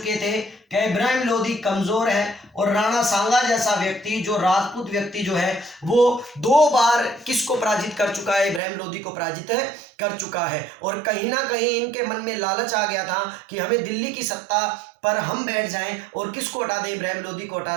थे कि इब्राहिम लोधी कमजोर है और राणा सांगा जैसा व्यक्ति, जो राजपूत व्यक्ति जो है, वो 2 बार किसको पराजित कर चुका है, इब्राहिम लोधी को पराजित कर चुका है। और कहीं ना कहीं इनके मन में लालच आ गया था कि हमें दिल्ली की सत्ता पर हम बैठ जाएं और किसको हटा दें, इब्राहिम लोधी को हटा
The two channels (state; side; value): drops out; left; at 8.6 s